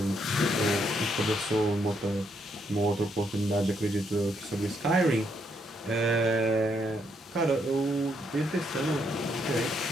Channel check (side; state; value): both; normal; correlation 0.75